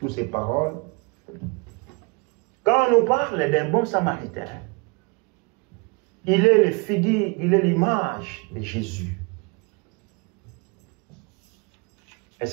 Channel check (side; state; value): left; quieter; 31.1 dB